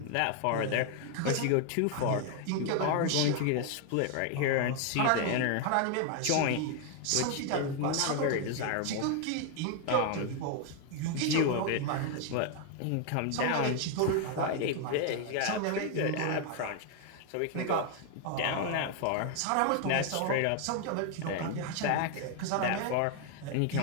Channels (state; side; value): different; both; correlation 0.01